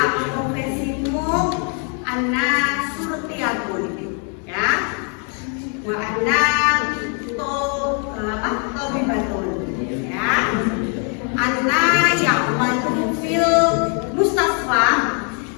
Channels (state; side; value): quieter; right; 39.6 dB